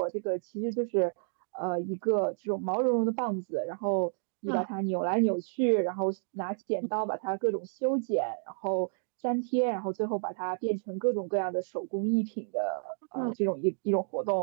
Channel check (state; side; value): silent; left; digital silence